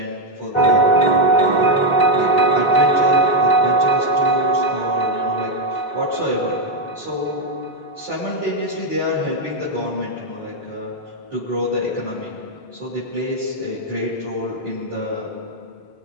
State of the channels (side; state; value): right; late; 3.7 ms